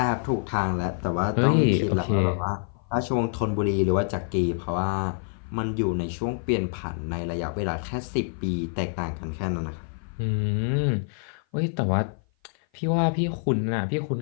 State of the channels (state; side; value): silent; right; 56 dB below the other